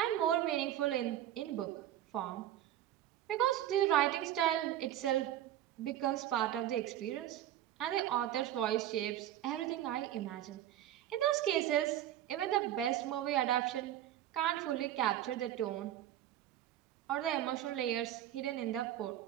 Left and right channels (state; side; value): quieter; left; 12.2 dB